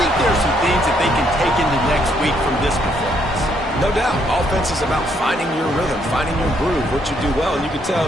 there are some things that they can take into next week from this performance. No doubt. Offense is about finding your rhythm, finding your groove, what you do well. And you can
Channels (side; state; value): both; normal; correlation 0.72